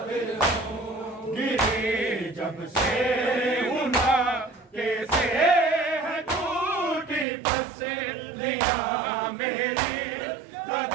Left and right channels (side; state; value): left; drops out; at 7.2 s